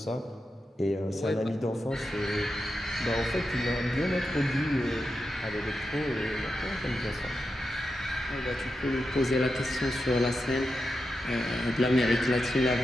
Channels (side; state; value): both; normal; correlation 0.88